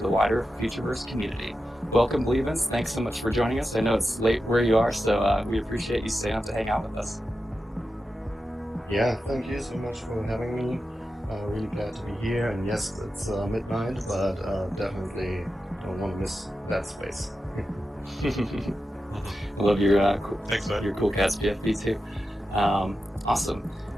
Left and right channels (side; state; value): both; normal; correlation 0.91